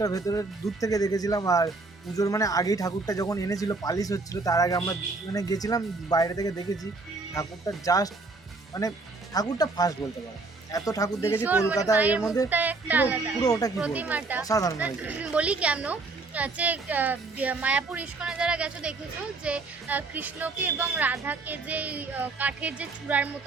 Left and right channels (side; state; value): left; quieter; 3.6 dB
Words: ভেতরে দূর থেকে দেখেছিলাম। আর পুজোর মানে আগেই ঠাকুরটা যখন এনেছিল পালিশ হচ্ছিল, তার আগে আমরা মানে গেছিলাম, বাইরে থেকে দেখেছি ঠাকুরটা, জাস্ট মানে ঠাকুরটা ফার্স্ট বলতে পারো, এত ঠাকুর দেখেছি কলকাতা, এর মধ্যে পুরো ওটা কি বলবো, অসাধারণ হয়েছে। বলি কেন, যে মায়াপুর ইস্কনে যারা গেছো দেখেছো যে কৃষ্ণকে এবং রাধাকে যে কাঠের যে চূড়ার